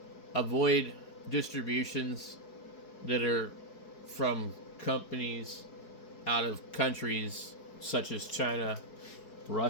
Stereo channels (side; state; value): right; late; 4.7 ms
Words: avoid distributions that are from companies out of countries such as China